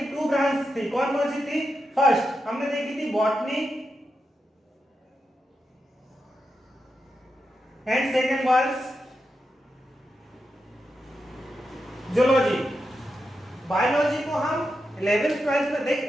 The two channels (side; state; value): both; normal; correlation 0.87